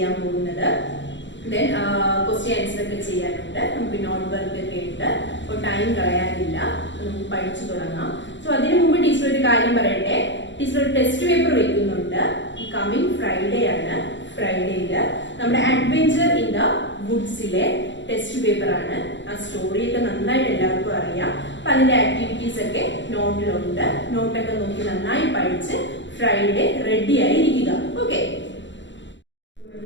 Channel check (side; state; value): right; late; 0.54 ms